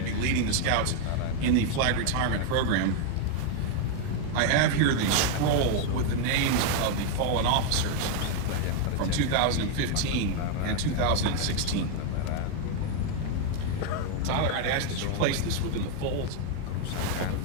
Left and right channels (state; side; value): different; both; correlation 0.00